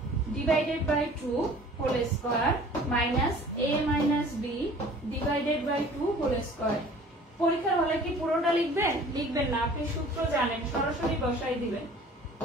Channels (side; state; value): both; normal; correlation 0.48